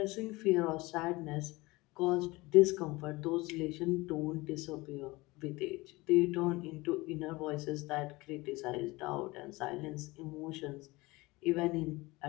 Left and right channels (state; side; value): quieter; right; 21.9 dB